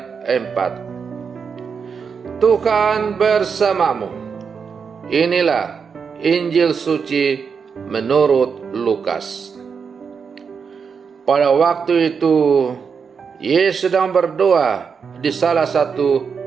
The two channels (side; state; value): left; quieter; 6.0 dB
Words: 4. Tuhan bersamamu. Inilah Injil suci menurut Lukas. Pada waktu itu Yesus sedang berdoa di salah satu